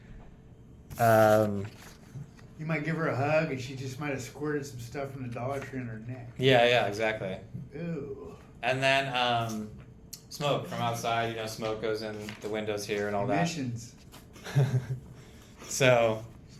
You might give her a hug, and she just might have squirted some stuff from the Dollar Tree on her neck. Yeah, exactly. Ooh. And then smoke from outside. Smoke goes in the windows here and all Emissions. that. So.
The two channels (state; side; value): identical; both; correlation 1.00